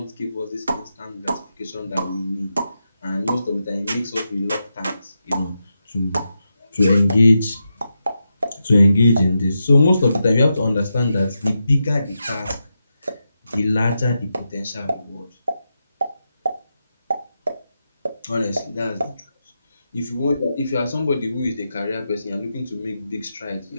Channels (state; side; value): inverted; both; correlation -0.87